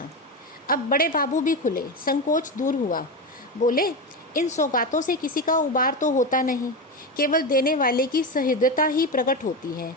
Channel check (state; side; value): normal; both; correlation 0.17